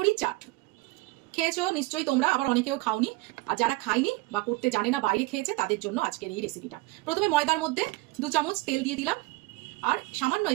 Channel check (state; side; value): quieter; left; 21.3 dB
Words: চাট। খেয়েছো নিশ্চয়ই তোমরা, আবার অনেকেও খাওনি। আর যারা খাইনি বা করতে জানে না, বাইরে খেয়েছে, তাদের জন্য আজকের এই রেসিপিটা। প্রথমে ময়দার মধ্যে 2 চামচ তেল দিয়ে দিলাম, আর সামান্য